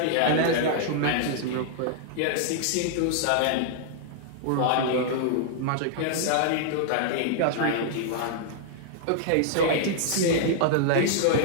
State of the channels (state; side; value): different; both; correlation -0.01